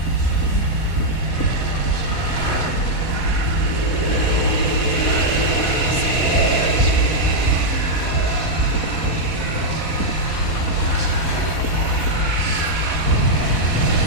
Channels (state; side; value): late; right; 4.1 ms